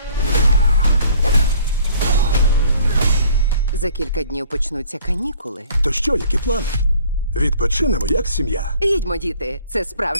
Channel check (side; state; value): both; inverted; correlation -0.55